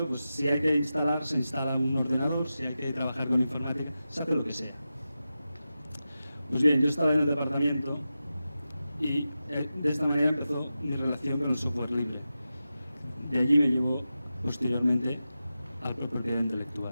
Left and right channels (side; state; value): both; inverted; correlation -0.92